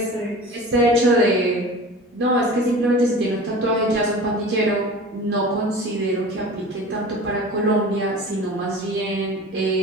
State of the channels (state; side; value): normal; both; correlation 0.38